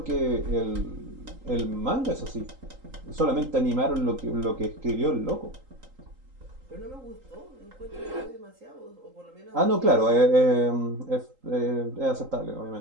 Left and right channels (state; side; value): late; left; 3.8 ms